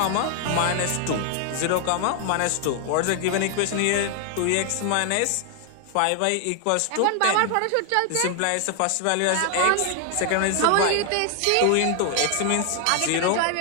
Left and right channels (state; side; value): different; both; correlation 0.00